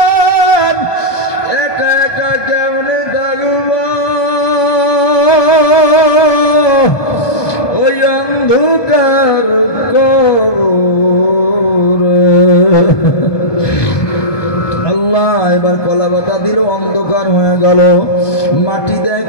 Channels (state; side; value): late; right; 1.2 ms